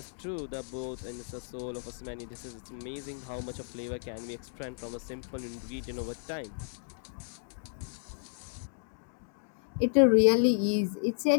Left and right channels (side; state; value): right; silent; digital silence